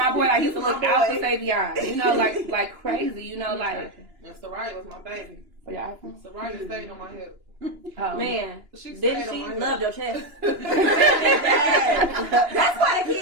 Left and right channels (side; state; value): left; late; 2.9 ms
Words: boy. Like, he used to look out for Savion. You know, like crazy. You know, like. And Soraya was my baby. Yeah. Soraya stayed on my hip. Man, she loved your chest. That's why the